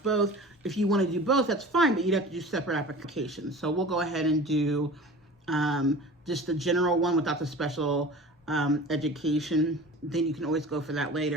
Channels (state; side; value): normal; both; correlation 0.39